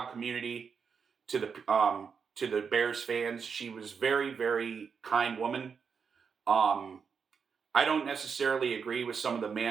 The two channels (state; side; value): quieter; left; 6.1 dB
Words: community, to the Bears fans. She was very, very kind woman. I don't necessarily agree with some of the